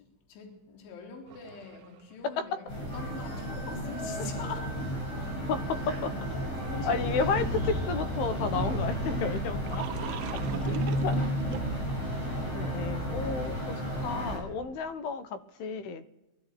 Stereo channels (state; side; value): late; right; 15 ms